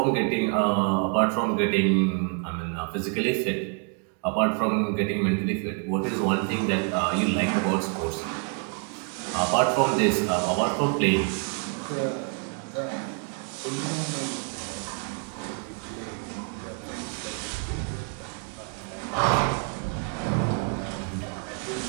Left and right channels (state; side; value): quieter; left; 35.2 dB